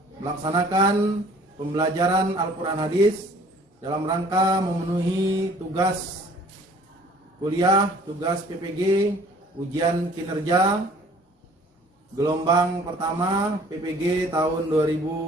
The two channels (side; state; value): both; normal; correlation 0.53